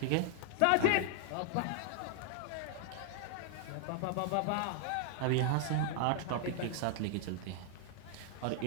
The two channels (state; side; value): different; both; correlation 0.00